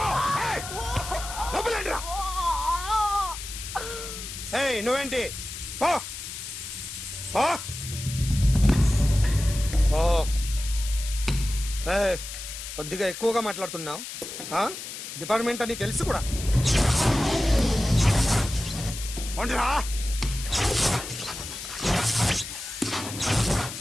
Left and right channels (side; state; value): left; noise; hiss, 9 dB below the sound